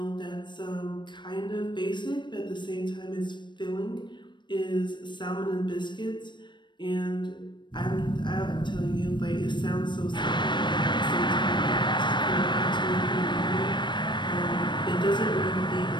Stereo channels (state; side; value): late; right; 0.22 ms